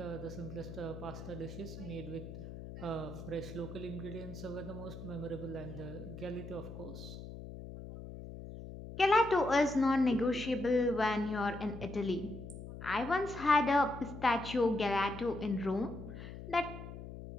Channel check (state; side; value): noise; left; hum, 11 dB below the sound